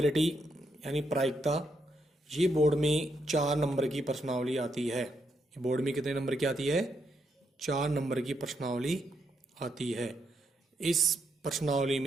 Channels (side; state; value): both; normal; correlation 0.79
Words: यानी प्रायिकता, ये बोर्ड में 4 नंबर की प्रश्नावली आती है। ये बोर्ड में कितने नंबर की आती है? 4 नंबर की प्रश्नावली आती है। इस प्रश्नावली